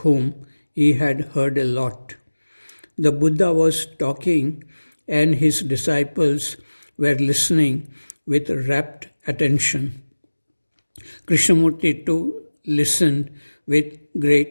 he had heard a lot. The Buddha was talking and his disciples were listening with rapt attention. Krishnamurti too listened with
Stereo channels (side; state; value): both; inverted; correlation -1.00